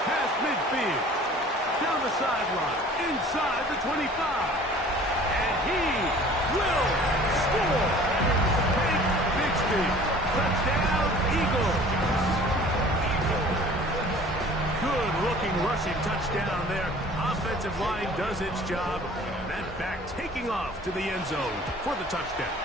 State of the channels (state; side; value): normal; both; correlation 0.48